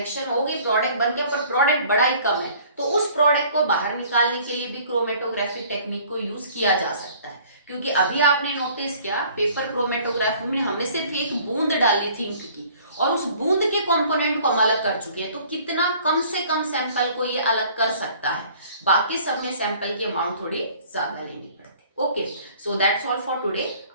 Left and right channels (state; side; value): inverted; both; correlation -0.53